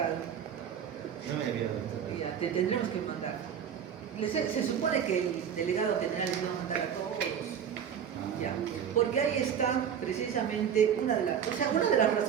No me había dado. Ya, te tendremos que mandar. Se supone que el delegado general les va a mandar a todos. Ya, porque ahí está precisamente una de las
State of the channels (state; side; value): quieter; left; 8.3 dB